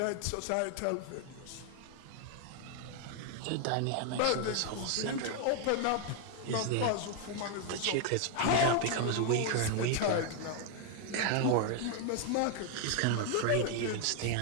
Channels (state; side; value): different; both; correlation 0.00